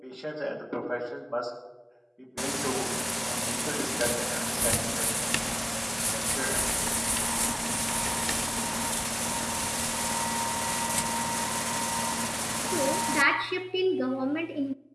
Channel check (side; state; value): both; identical; correlation 1.00